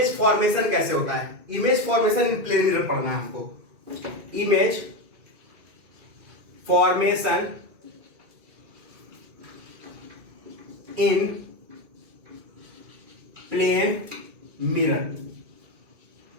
फॉर्मेशन कैसे होता है। Image formation in plane mirror पढ़ना है हमको। Image formation in plane mirror,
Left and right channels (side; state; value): left; late; 2.4 ms